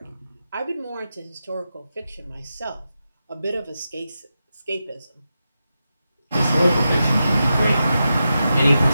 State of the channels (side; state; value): both; inverted; correlation -0.90